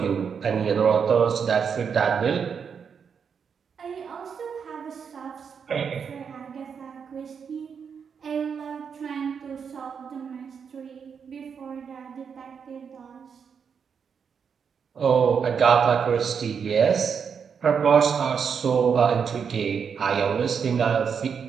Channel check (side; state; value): left; quieter; 6.6 dB